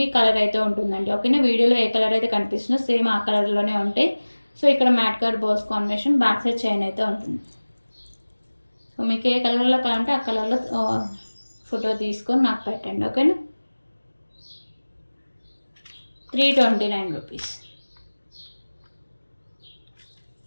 కలర్ అయితే ఉంటుందండి. ఓకేనా. వీడియోలో ఏ కలర్ అయితే కనిపిస్తుందో సేమ్ ఆ కలర్లోనే ఉంటాయి. సో ఇక్కడ matte colour balls combination, back side chain అయితే ఉంటుంది. సో మీకు ఏ కలర్లో కావాలంటే ఆ కలర్లో ఫోటో తీసుకొని నాకు పెట్టండి. ఓకేనా. 329 రూపీస్.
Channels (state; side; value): inverted; both; correlation -1.00